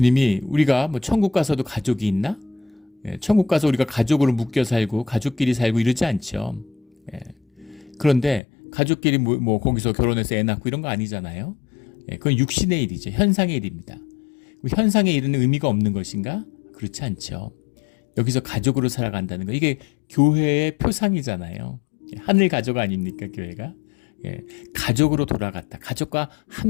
우리가 천국 가서도 가족이 있나? 천국 가서 우리가 가족으로 묶여 살고 가족끼리 살고 이러지 않죠. 그런데 가족끼리 거기서 결혼해서 애 낳고 이런 거 아니잖아요. 그건 육신의 일이죠. 현상의 일입니다. 현상의 일은 의미가 없는 것인가? 그렇지 않죠. 여기서 가족으로 살아간다는 거, 이게 교회의 표상이잖아요. 하늘 가족 아닙니까, 교회가? 가족으로 돌아갔다. 가족과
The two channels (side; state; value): right; drops out; at 8.4 s